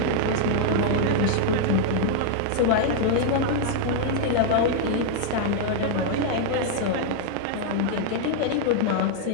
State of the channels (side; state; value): both; different; correlation 0.00